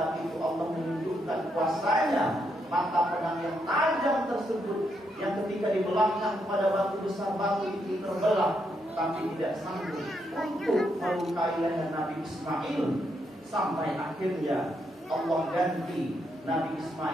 itu Allah menunjukkan kuasanya. Mata pedang yang tajam tersebut, yang ketika dibelahkan kepada batu besar, batu itu terbelah, tapi tidak sanggup untuk melukai leher Nabi Ismail. Sampai akhirnya Allah ganti Nabi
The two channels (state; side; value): normal; both; correlation 0.79